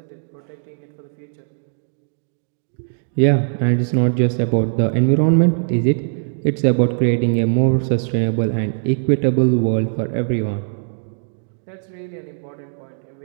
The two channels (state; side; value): silent; left; digital silence